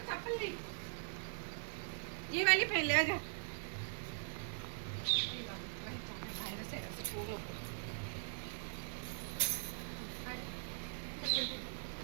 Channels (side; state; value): left; silent; digital silence